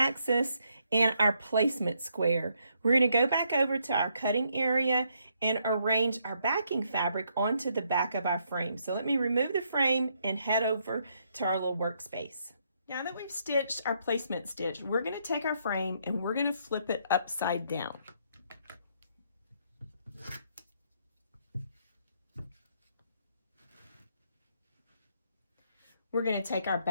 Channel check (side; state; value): both; inverted; correlation -0.74